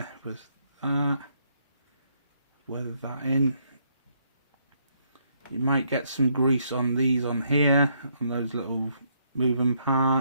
with that, weather that in. You might get some grease on these on here, on those little moving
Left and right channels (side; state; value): both; inverted; correlation -0.72